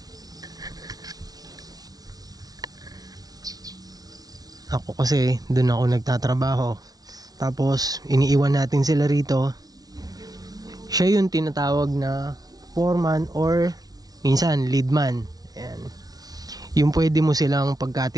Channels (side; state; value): left; late; 0.19 ms